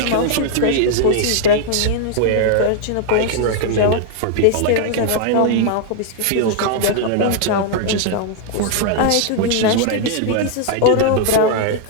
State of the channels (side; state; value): both; different; correlation 0.00